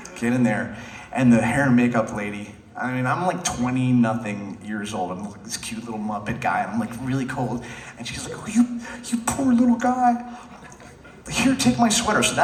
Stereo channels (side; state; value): both; identical; correlation 1.00